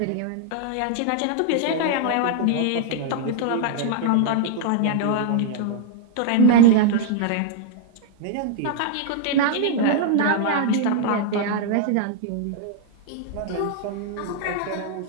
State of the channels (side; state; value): both; different; correlation -0.01